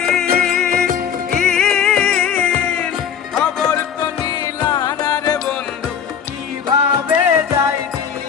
খবর তো নিলানা রে বন্ধু, কিভাবে যাই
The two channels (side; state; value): right; quieter; 7.8 dB